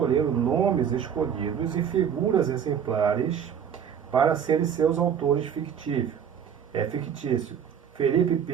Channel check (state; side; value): quieter; left; 8.1 dB